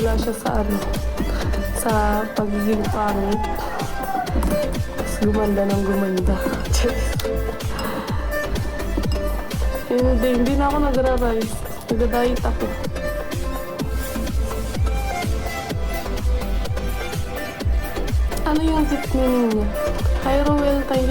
siya sa sa pagiging pangit. Gumanda ng gumanda. Hindi na ako nagra-rise. Nag-diet ako. Ano yung tip meaning niya? Hi Roel, thank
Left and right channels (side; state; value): both; identical; correlation 1.00